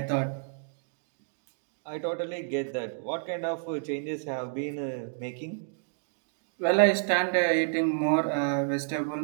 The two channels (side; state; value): left; silent; digital silence